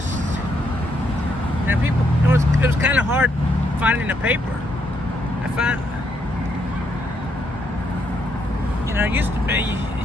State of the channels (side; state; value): both; normal; correlation 0.76